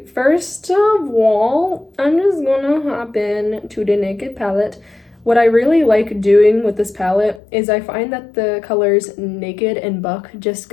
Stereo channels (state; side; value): drops out; right; at 7.4 s